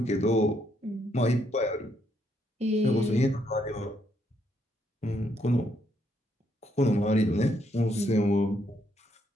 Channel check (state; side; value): normal; both; correlation 0.74